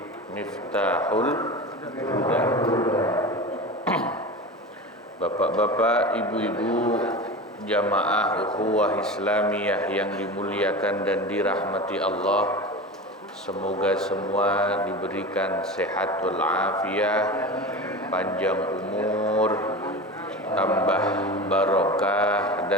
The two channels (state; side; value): normal; both; correlation 0.29